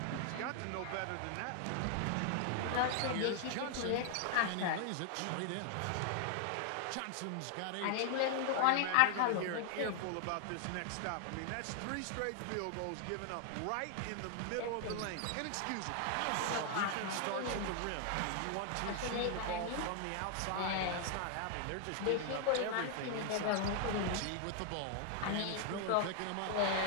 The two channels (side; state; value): both; different; correlation 0.00